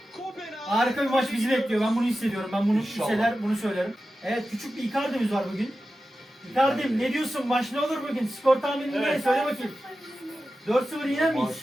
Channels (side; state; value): both; normal; correlation 0.93